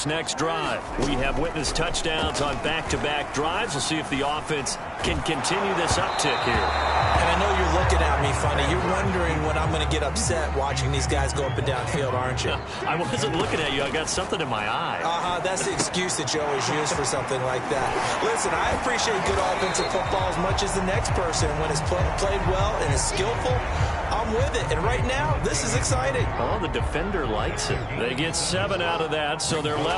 next drive. We have witnessed touchdowns on back-to-back drives. We'll see if the offense can continue this uptick here. And I know you're looking at me funny. You're wondering when I'm going to get upset watching these guys go up and down field, aren't you? I wasn't looking at you. I got something in my eye. That's the excuse that you always use for something like that. Listen, I appreciate good offensive football as much as the next person. When it's played well and is skillful, I'm with it. And right now, this is exciting. Oh, the defender likes it. They get 7 out of that, so they're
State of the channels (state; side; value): identical; both; correlation 1.00